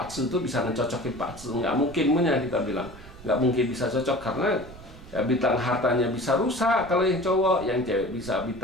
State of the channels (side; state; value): right; noise; rumble, 17 dB below the sound